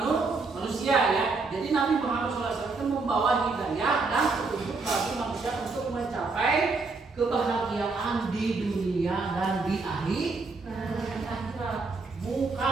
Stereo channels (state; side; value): quieter; left; 4.0 dB